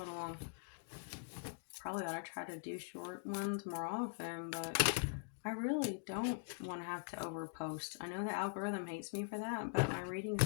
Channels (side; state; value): right; silent; digital silence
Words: little long. Probably ought to try to do short ones more often, but I really don't want to have to overpost. I know the algorithm hates me for that, but my readings